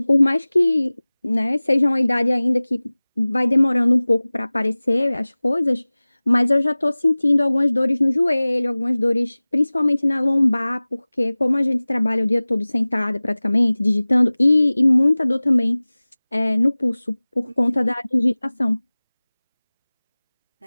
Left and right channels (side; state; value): both; inverted; correlation -0.99